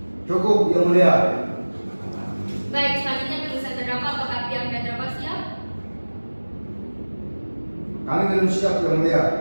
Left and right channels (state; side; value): inverted; both; correlation -1.00